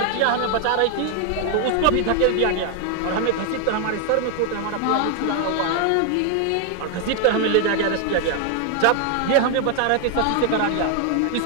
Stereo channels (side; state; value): both; different; correlation 0.00